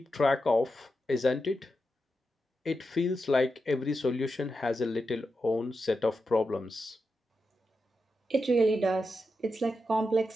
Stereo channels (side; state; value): both; normal; correlation 0.88